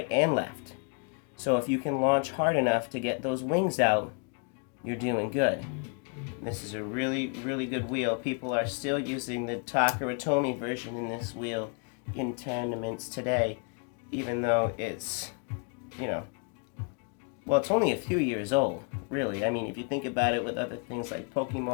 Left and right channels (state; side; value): quieter; right; 36.4 dB